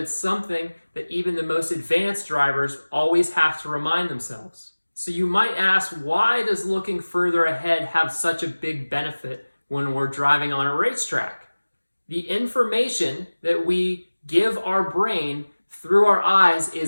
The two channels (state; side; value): inverted; both; correlation -1.00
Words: something that even the most advanced drivers always have to remind themselves. So you might ask, why does looking further ahead have such a big benefit when we're driving on a racetrack? The information that we give our brain through our eyes